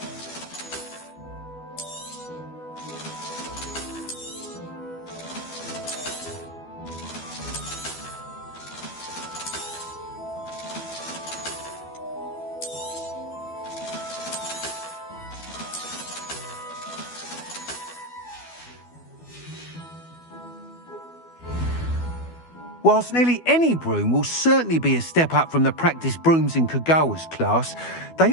Whilst nearly any broom will certainly be a step up from the practice brooms in Kagawa's class,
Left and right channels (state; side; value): late; right; 12 ms